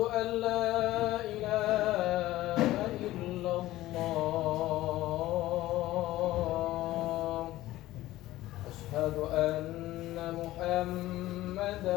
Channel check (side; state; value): right; quieter; 16.2 dB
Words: an la ilaha illallah. Asyhadu anna